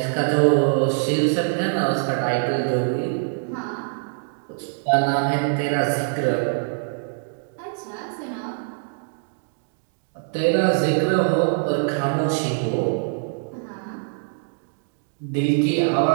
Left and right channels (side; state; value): left; silent; digital silence